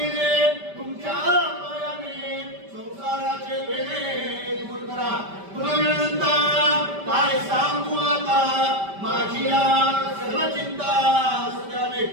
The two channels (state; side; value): late; left; 5.1 ms